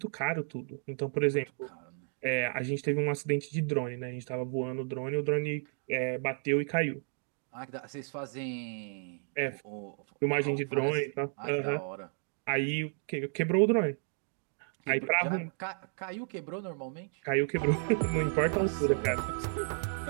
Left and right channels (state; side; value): silent; left; 56 dB below the other